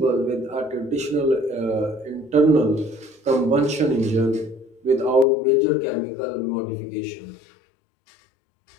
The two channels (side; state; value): right; drops out; at 5.2 s